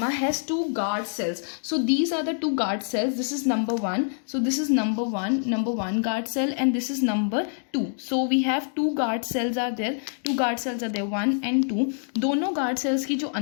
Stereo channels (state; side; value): silent; right; digital silence